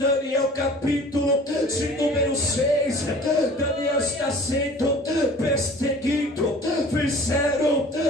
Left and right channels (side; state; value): both; normal; correlation 0.46